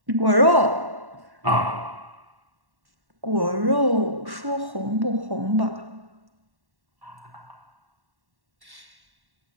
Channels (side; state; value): left; late; 1.1 ms